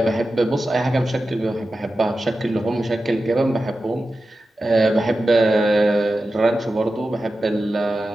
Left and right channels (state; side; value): normal; both; correlation 0.93